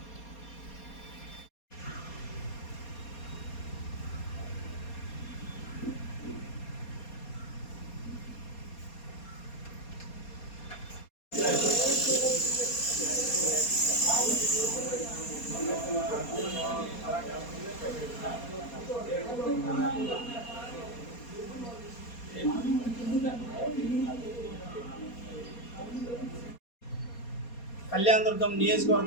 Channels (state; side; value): late; right; 4.2 ms